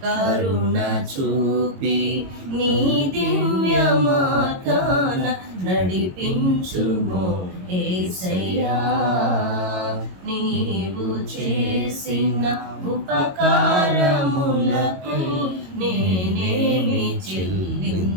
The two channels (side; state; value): left; late; 22 ms